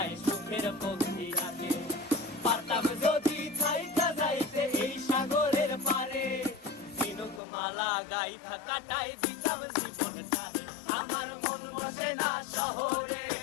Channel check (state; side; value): drops out; right; at 7.4 s